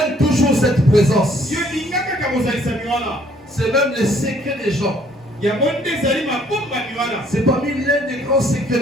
toujours cette présence. C'est même le secret des gens. C'est parmi l'un des grands secrets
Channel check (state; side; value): normal; both; correlation 0.62